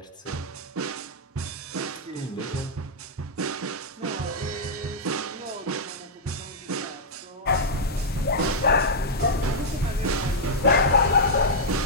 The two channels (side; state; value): both; normal; correlation -0.06